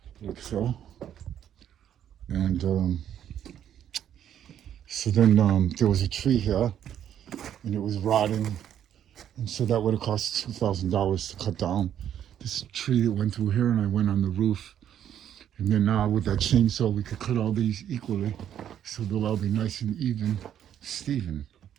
like so. And so then there was a tree here and it was rotting, and so that would have cost $2,000 to cut down this tree that went through here, and I went on the roof. And then with that chainsaw, we could cut all these equally, so they'll all be nice and even, Steven.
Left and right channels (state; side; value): quieter; left; 10.1 dB